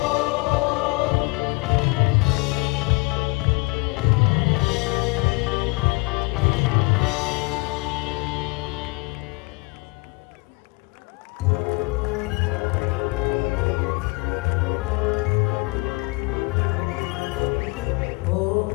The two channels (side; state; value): right; quieter; 27.9 dB